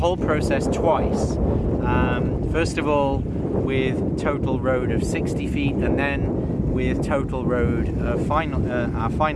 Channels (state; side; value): identical; both; correlation 1.00